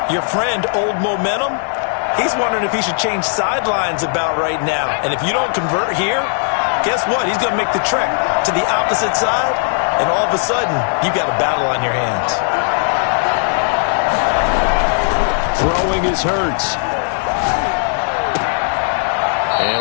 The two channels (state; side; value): silent; right; 68 dB below the other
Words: your friend, Old Momentum, he's wondering if he should change sidelines about right now. And if you don't convert here, guess what? He's going to make the trek to the opposite side, and all of a sudden, you've got a battle on your hands. Throwing is Hurts.